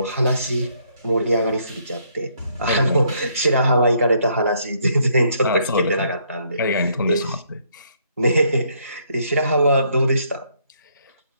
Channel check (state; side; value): inverted; both; correlation -0.70